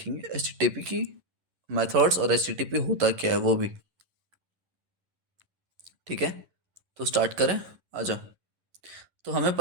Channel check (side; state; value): left; late; 11 ms